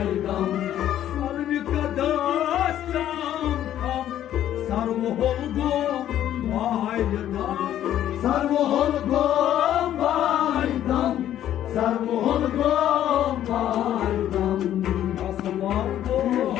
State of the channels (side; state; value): right; quieter; 11.6 dB